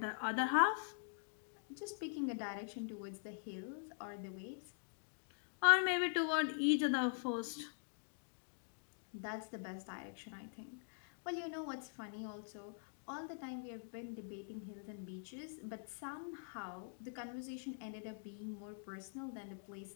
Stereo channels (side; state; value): right; silent; digital silence